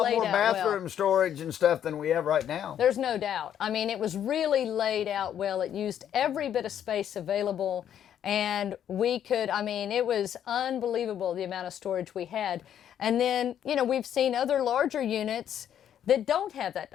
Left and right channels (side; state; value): right; quieter; 9.8 dB